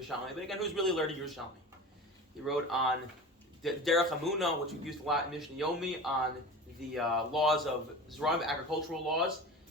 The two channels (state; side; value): normal; both; correlation 0.33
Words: but again, who's really learning Yerushalmi? He wrote on Derech Hamuna, which we've used a lot in Mishnah Yomi, on the laws of Zeraim, agricultural laws.